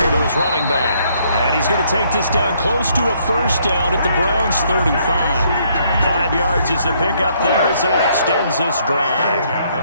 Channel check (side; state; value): both; inverted; correlation -0.68